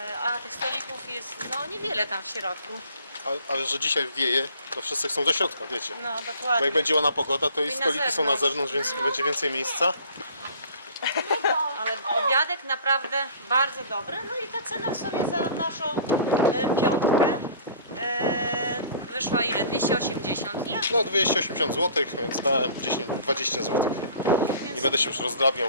A tych stolików jest niewiele tam w środku. Ale że dzisiaj wieje, to wszyscy chcą do środka, wiecie. No Bo dokładnie. jak będzie ładna pogoda, to i I na stoliki są na zewnątrz. zewnątrz, więc będzie więcej miejsca. Ale obiadek naprawdę bardzo dobry. No i ta cena w sumie za naszą piątkę wyszła ile? 280, nie? No 280 zł, więc dałem 10-20 zł. Nie będę się już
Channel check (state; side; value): inverted; both; correlation -0.48